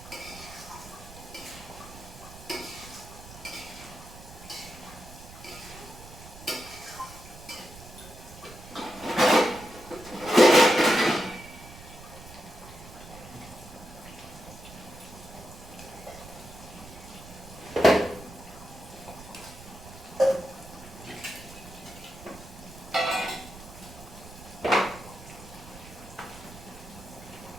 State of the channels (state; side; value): noise; right; rumble, 16 dB below the sound